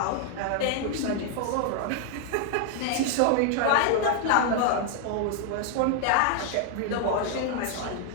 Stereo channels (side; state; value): both; different; correlation 0.00